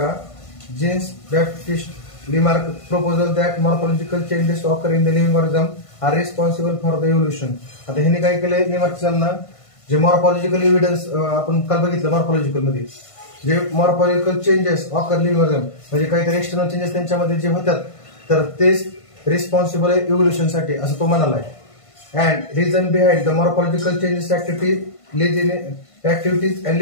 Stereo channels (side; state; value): right; late; 1.5 ms